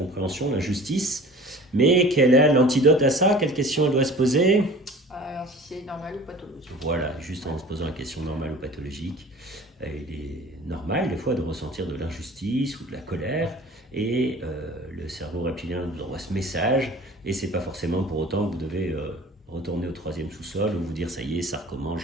l'injustice. Mais quel est l'antidote à ça? Quelle question elle doit se poser? Alors, si c'est normal ou pathologique. Voilà, juste en se posant la question normale ou pathologique. Il est normal des fois de ressentir de l'injustice ou de la colère et le cerveau reptilien vous envoie ce message et c'est pas forcément pour autant que vous devez retourner au 3e sous-sol ou vous dire ça y est, ça recommence,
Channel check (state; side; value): normal; both; correlation 0.43